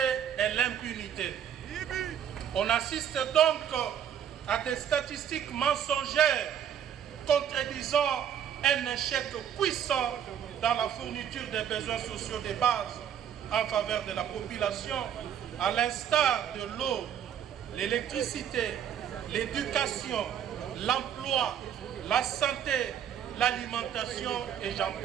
et l'impunité. On assiste donc à des statistiques mensongères contredisant un échec puissant dans la fourniture des besoins sociaux de base en faveur de la population, à l'instar de l'eau, l'électricité, l'éducation, l'emploi, la santé, l'alimentation et j'en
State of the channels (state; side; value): quieter; left; 9.2 dB